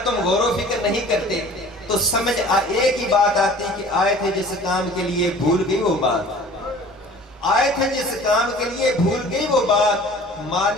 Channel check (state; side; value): normal; both; correlation 0.46